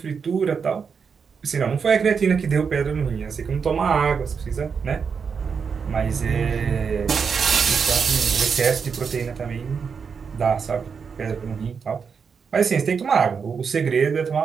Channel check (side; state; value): left; quieter; 6.0 dB